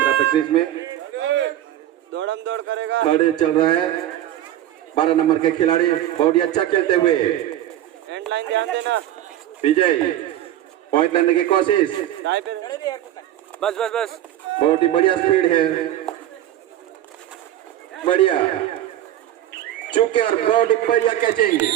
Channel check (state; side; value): quieter; left; 12.6 dB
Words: अपने क्रीज में दौड़म दौड़ करेगा। खड़े चल रहा है 12 नंबर के खिलाड़ी बहुत ही अच्छा खेलते हुए। एंड लाइन ध्यान देना। विजय पॉइंट लेने की कोशिश। बस बस बस। बहुत ही बढ़िया स्पीड है, बढ़िया चुके और बहुत ही बढ़िया कैचिंग